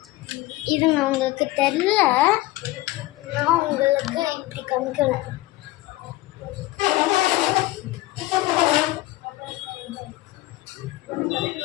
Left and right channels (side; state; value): right; quieter; 18.1 dB